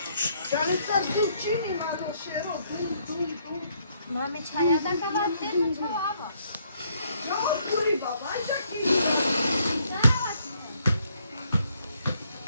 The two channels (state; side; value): inverted; both; correlation -0.70